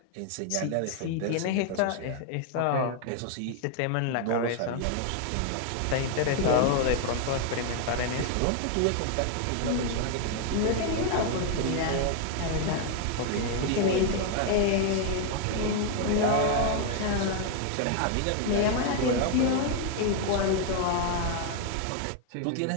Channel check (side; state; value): both; different; correlation 0.00